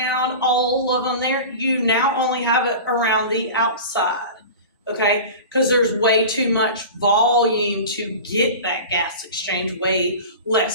all of them there, you now only have it around the outside. Okay, because there's way too much volume to get that gas exchange, way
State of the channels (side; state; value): both; inverted; correlation -0.33